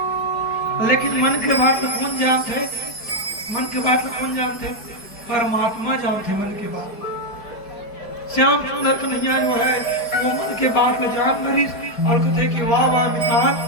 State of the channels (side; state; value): right; late; 4.6 ms